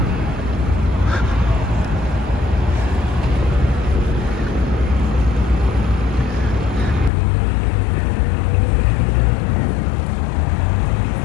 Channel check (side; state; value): right; drops out; at 7.1 s